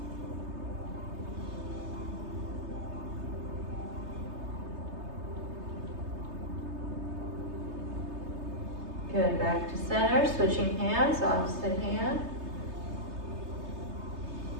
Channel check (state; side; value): late; left; 3.3 ms